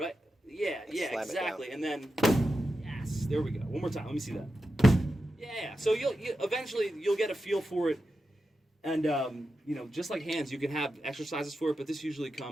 Yeah, exactly. And then, yes, there we go. One more time. Let me see that. Yeah. So you'll eventually get a feel for it, and you know, just like hands, you can have exercises for it, but this usually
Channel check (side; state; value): both; normal; correlation 0.90